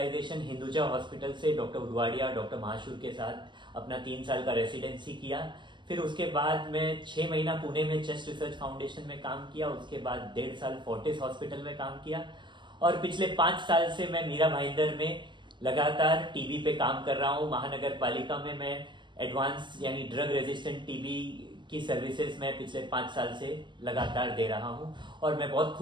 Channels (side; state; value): left; late; 0.22 ms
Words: हिंदुजा हॉस्पिटल से डॉक्टर उदवाड़िया, डॉक्टर महाशूर के साथ अपना 3 साल का रेसिडेंसी किया। फिर उसके बाद मैं 6 महीना पुणे में चेस्ट रिसर्च फाउंडेशन में काम किया। उसके बाद 1.5 साल फोर्टिस हॉस्पिटल में काम किया और पिछले 5 साल से मैं मीरा भाईंदर में लगातार टीबी पे काम कर रहा हूँ। महानगर पालिका में मैं एडवांस यानी ड्रग रेजिस्टेंट टीबी की सर्विसेज मैं पिछले 5 साल से लगातार दे रहा हूँ और मैं बहुत